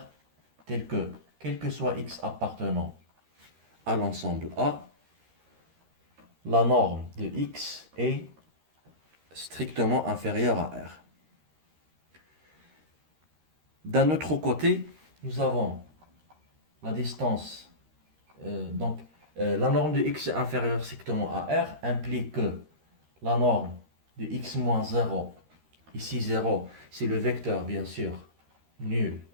tel que, quel que soit X appartenant à l'ensemble A, la norme de X est strictement inférieure à R. D'un autre côté, nous avons la distance, la norme de X est inférieure strictement à R, implique que la norme de X moins 0, ici 0, c'est le vecteur bien sûr nul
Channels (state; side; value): late; left; 13 ms